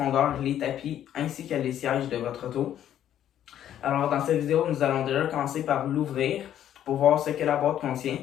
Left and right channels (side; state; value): right; quieter; 10.9 dB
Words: les tapis ainsi que les sièges de votre auto. Alors, dans cette vidéo, nous allons déjà commencer par l'ouvrir pour voir ce que la boîte contient